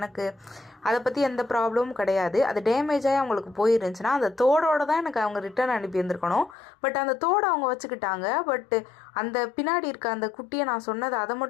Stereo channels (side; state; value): right; drops out; at 6.6 s